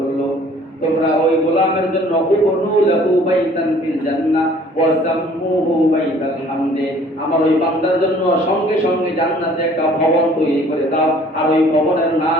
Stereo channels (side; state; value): both; normal; correlation 0.55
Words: তোমরা ওই গোলামের জন্য উবনু লাহু বাইতান ফিল জান্নাহ ওয়া সাম্মুহু বাইতাল হামদে, আমার ওই বান্দার জন্য সঙ্গে সঙ্গে জান্নাতে একটা ভবন তৈরি করে দাও, আর ওই ভবনের